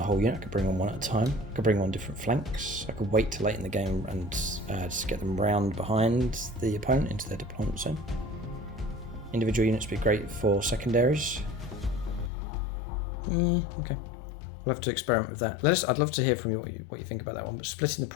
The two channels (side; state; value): right; drops out; at 12.3 s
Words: whole unit, I could bring on one at a time. I could bring on different flanks. I could wait till late in the game and just get them round behind the opponent into their deployment zone. Individual units would be great for secondaries. Yeah, okay. We'll have to experiment with that. I'd love to hear from you what you think about that one. But splitting the